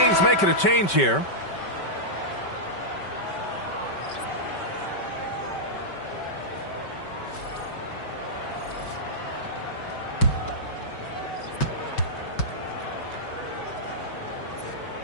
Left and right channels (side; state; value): right; late; 5.2 ms